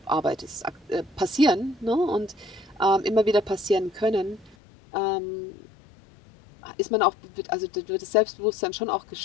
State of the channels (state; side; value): drops out; right; at 4.5 s